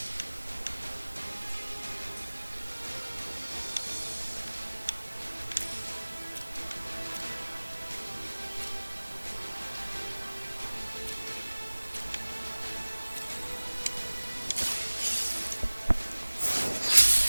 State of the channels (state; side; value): inverted; both; correlation -1.00